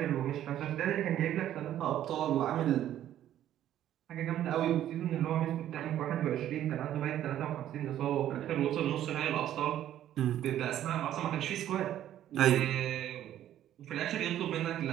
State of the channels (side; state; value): left; quieter; 11.8 dB